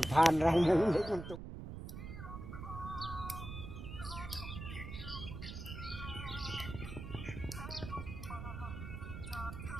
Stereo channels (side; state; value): right; noise; rumble, 8 dB below the sound